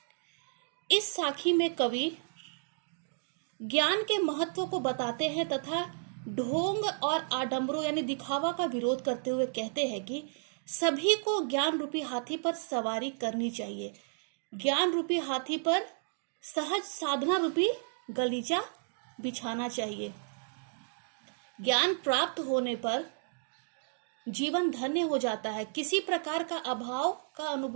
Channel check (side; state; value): left; silent; digital silence